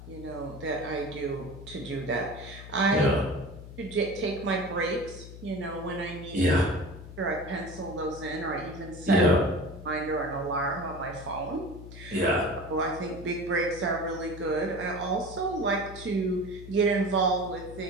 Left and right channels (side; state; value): left; noise; hum, 14 dB below the sound